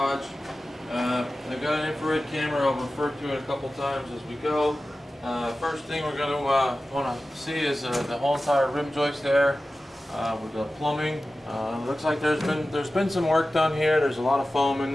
I've got an infrared camera, I'll refer to it a couple times as we go. First thing we're going to want to see is the whole entire rim joist there with the plumbing. Looks like there's been some work done here. There's a lot of foam in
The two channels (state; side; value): normal; both; correlation 0.95